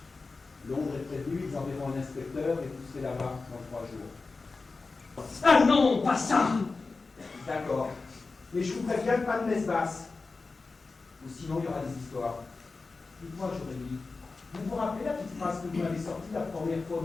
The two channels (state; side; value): quieter; right; 4.0 dB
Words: Londres est prévenu, ils enverront un inspecteur et vous serez là-bas dans 3 jours. Ah non, pas ça. D'accord. Mais je vous préviens, pas de messe basse. Ou sinon, il y aura des histoires. Dites-moi, Jérémy, vous vous rappelez la petite phrase que vous m'avez sortie la première fois